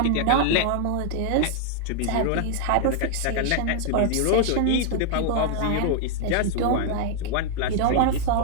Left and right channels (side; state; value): both; different; correlation 0.00